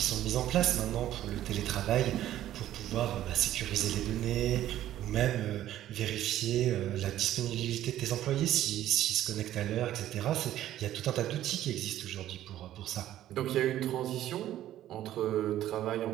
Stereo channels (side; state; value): left; quieter; 12.9 dB